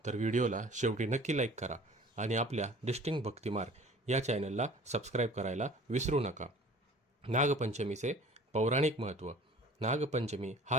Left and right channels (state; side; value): normal; both; correlation 0.47